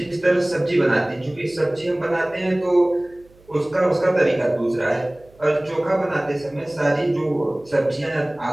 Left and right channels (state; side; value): noise; right; hum, 28 dB below the sound